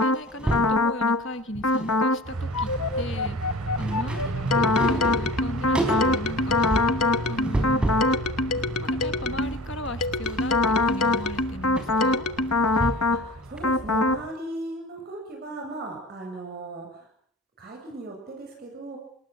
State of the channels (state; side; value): normal; both; correlation 0.40